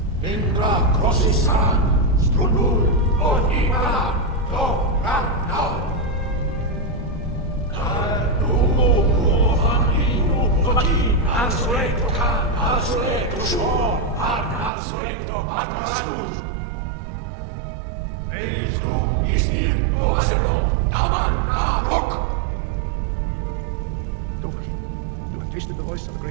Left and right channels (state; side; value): drops out; left; at 14.7 s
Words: Indra Crossisan, Strunul, Onima, Do, Ragnar. Dovahkiin, you have tasted the voice of the